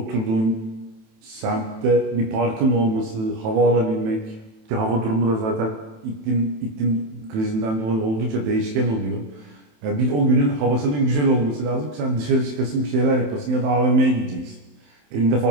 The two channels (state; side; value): late; left; 27 ms